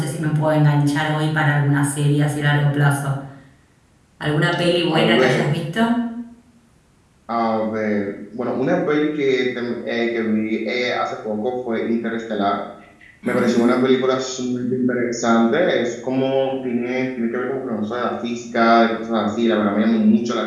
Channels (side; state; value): both; identical; correlation 1.00